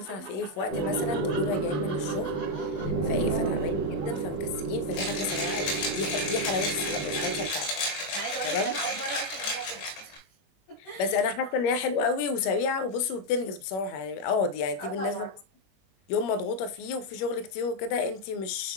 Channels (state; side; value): late; right; 21 ms